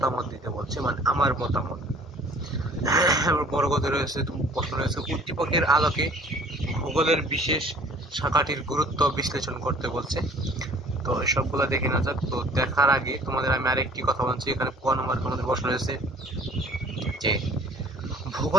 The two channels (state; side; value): normal; both; correlation 0.52